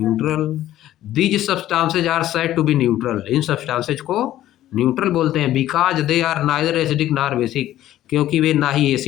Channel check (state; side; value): quieter; right; 13.4 dB